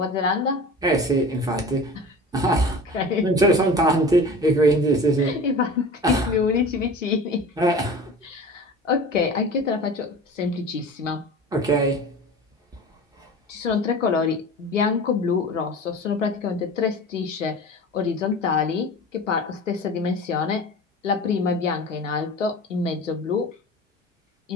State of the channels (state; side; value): normal; both; correlation 0.37